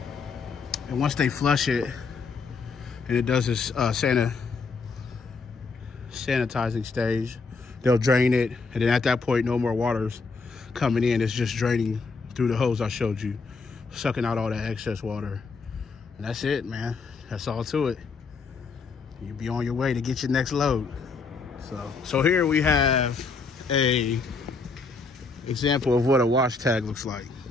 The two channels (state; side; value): quieter; right; 4.5 dB